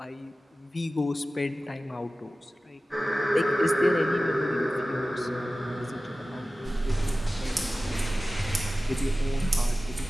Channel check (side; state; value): both; normal; correlation 0.96